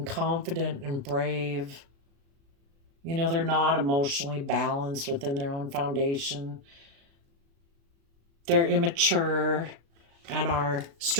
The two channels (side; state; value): left; late; 36 ms